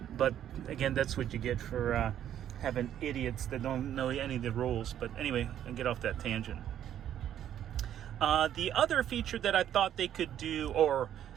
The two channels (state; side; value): quieter; left; 10.6 dB